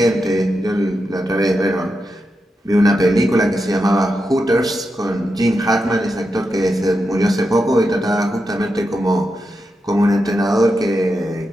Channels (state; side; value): normal; both; correlation 0.87